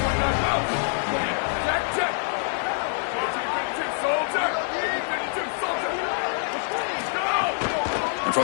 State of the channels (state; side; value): silent; right; digital silence